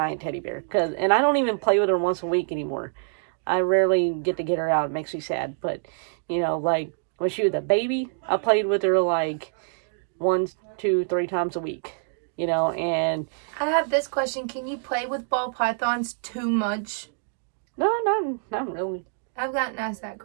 teddy bear. And I don't even play with her once a week anymore. I rarely get to get her out. It makes me sad. But, you know, like, when she was a baby, I played with her like 1, 2, 3 times a week. You know, and... I have this question. Can you play with ball pythons too much? No, not really. I've gotten asked that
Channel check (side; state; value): left; silent; digital silence